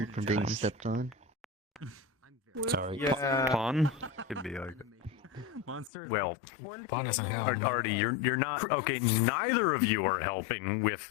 from being stepped on. Sorry. Yeah. Pawn. Could be like that. Monsters. Well, Artie, you're not okay. Neither of you are helping with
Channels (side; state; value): right; drops out; at 5.9 s